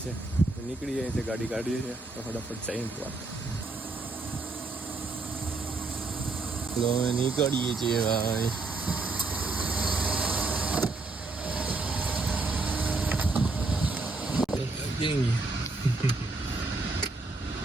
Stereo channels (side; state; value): left; quieter; 3.5 dB